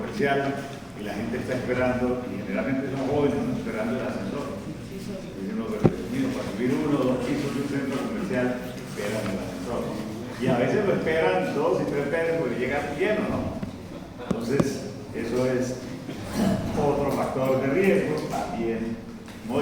y la gente está esperando, y generalmente son jóvenes, ¿no? Esperando el ascensor. Y uno, para subir 1 o 2 pisos de un centro comercial, esperan el ascensor, ¿no? Y a veces lo esperan 2 y 3 veces porque llega lleno, ¿no? Entonces, eso es otro factor de riesgo, también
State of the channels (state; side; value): identical; both; correlation 1.00